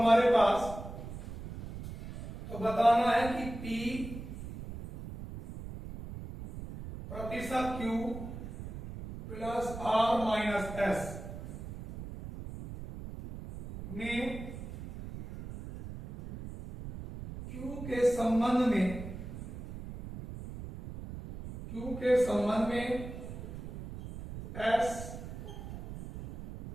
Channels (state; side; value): noise; right; rumble, 10 dB below the sound